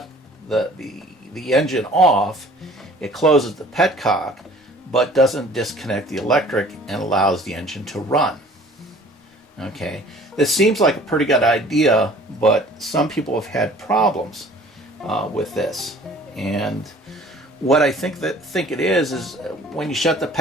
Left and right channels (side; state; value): both; normal; correlation 0.50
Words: the engine off, it closes the petcock, but doesn't disconnect the electric and allows the engine to run. Okay, this seems like a pretty good idea, but some people have had problems with this. And what I think it is when you shut the